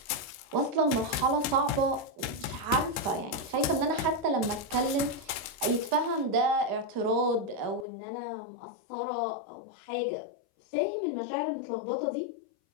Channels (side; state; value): right; drops out; at 7.9 s